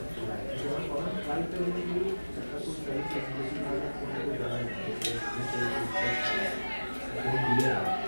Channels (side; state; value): both; inverted; correlation -1.00